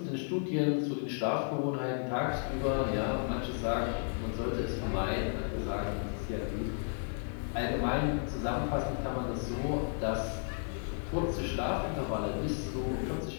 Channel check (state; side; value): silent; right; 55 dB below the other